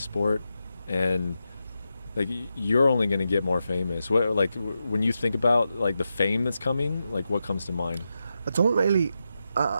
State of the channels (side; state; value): both; inverted; correlation -0.88